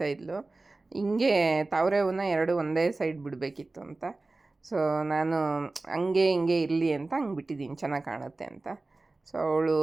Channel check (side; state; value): left; quieter; 3.3 dB